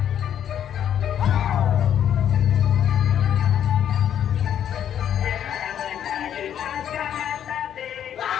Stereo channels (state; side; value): quieter; right; 9.8 dB